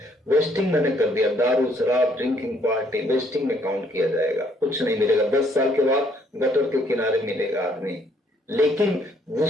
वेस्टिंग मैंने कर दिया, दारू, शराब, ड्रिंकिंग पार्टी, वेस्टिंग में काउंट किया जाएगा, कुछ नहीं मिलेगा। 10 साल के बाद गटर के किनारे मिलेगा आदमी। लेकिन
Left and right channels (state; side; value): normal; both; correlation 0.66